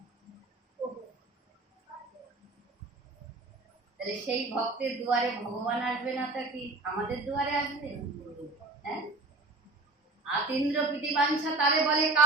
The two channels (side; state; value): left; quieter; 3.2 dB